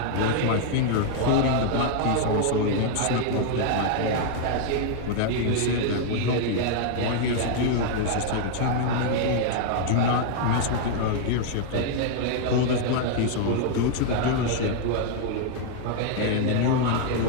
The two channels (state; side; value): different; both; correlation 0.00